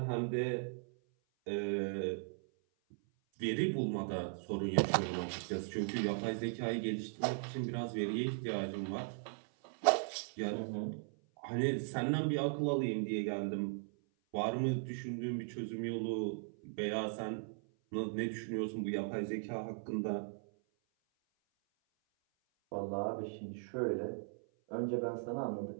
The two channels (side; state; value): left; silent; 52 dB below the other